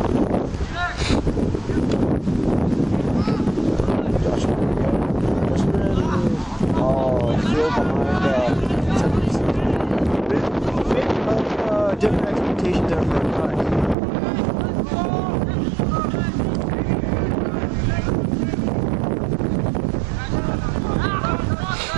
Different expectations there for our guys.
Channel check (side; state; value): left; drops out; at 14.0 s